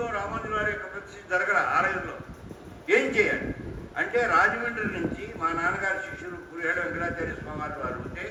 రామానుజుల వారి యొక్క ప్రతిష్ఠ జరగల ఆలయంలో. ఏం చేయాలి అంటే రాజమండ్రి నుంచి మా నాన్నగారి శిష్యులు పురిహేడ వెంకటాచార్య స్వామి వారు ఉంటే,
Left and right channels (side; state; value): both; identical; correlation 1.00